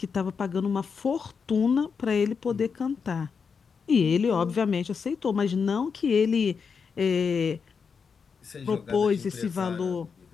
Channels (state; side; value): quieter; right; 5.8 dB